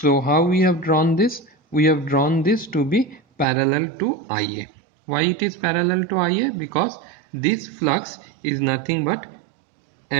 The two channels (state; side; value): drops out; left; at 3.5 s